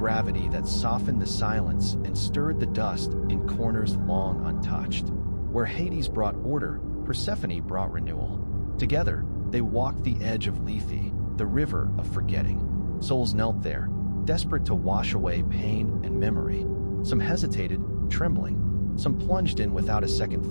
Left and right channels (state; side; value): inverted; both; correlation -1.00